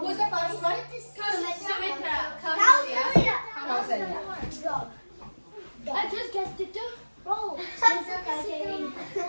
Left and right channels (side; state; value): both; inverted; correlation -1.00